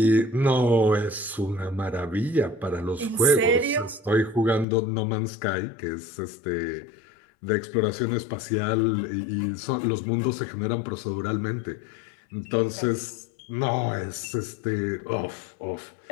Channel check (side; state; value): right; drops out; at 4.7 s